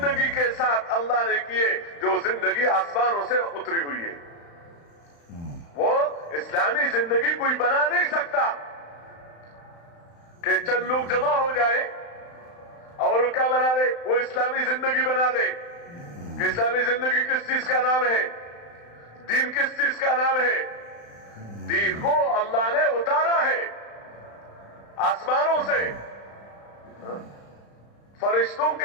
کے ساتھ اللہ نے کیے جو زندگی آسمانوں سے اتری ہوئی ہے۔ وہ اسلامی زندگی کوئی بنا نہیں سکتا کہ چند لوگ جمع ہو جائے اور کیا بنا دے، وہ اسلامی زندگی بنا دے۔ کہ اسلامی زندگی کس چیز کا نام ہے؟ دین کس چیز کا نام ہے؟ دین کو اللہ نے اتارا ہے آسمانوں سے، فرشتوں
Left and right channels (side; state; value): right; late; 35 ms